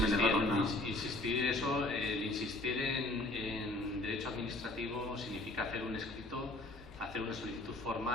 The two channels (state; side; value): normal; both; correlation 0.53